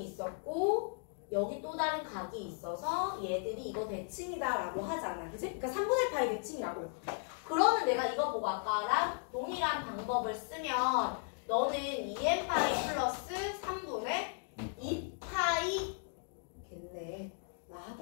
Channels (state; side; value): silent; right; 54 dB below the other